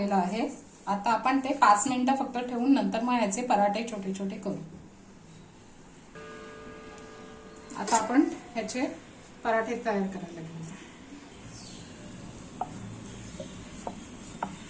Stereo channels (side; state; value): both; identical; correlation 1.00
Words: आहे। आता आपण ते 5 मिनिटं फक्त ठेवून नंतर मग याचे पराठे छोटे छोटे करू। आता आपण ह्याचे पराठे तयार करायला घेऊ।